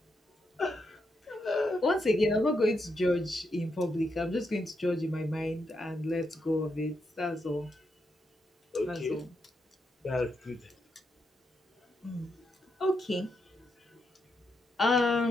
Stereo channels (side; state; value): both; normal; correlation 0.82